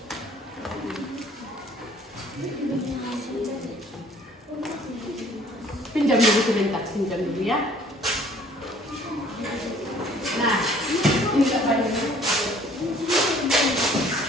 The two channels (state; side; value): normal; both; correlation 0.56